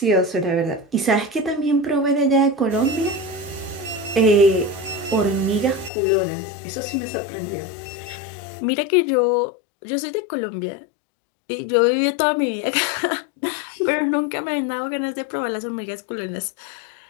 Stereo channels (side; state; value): right; drops out; at 5.9 s